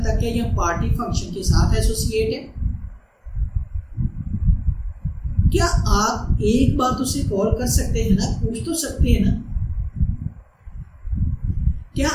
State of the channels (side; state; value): both; identical; correlation 1.00